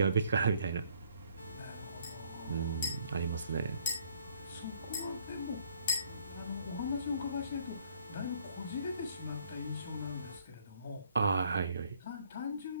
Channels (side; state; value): both; inverted; correlation -0.65